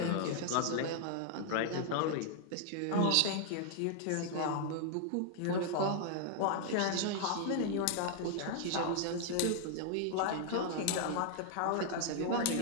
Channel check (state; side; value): different; both; correlation 0.00